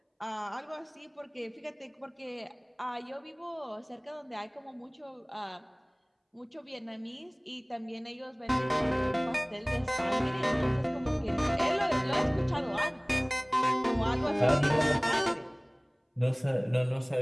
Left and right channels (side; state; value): both; identical; correlation 1.00